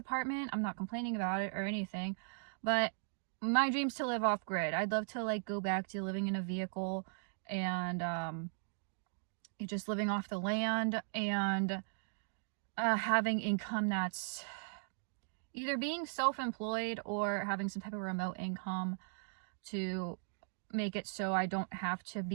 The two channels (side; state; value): left; silent; digital silence